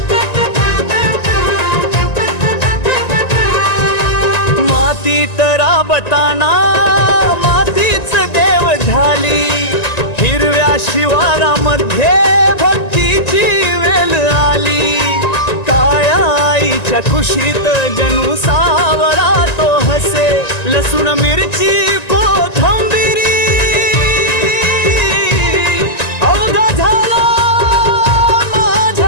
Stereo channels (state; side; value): late; right; 1.9 ms